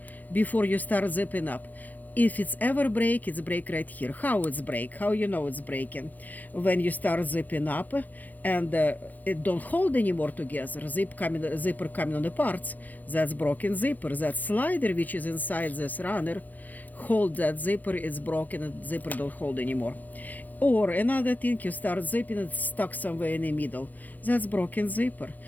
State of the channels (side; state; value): right; late; 0.082 ms